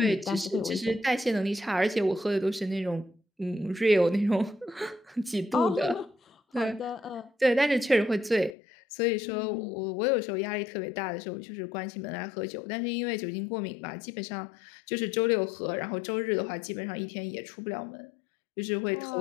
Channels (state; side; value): drops out; right; at 8.6 s